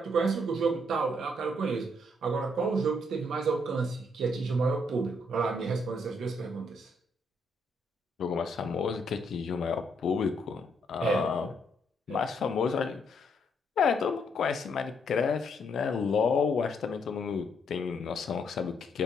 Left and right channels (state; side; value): normal; both; correlation 0.73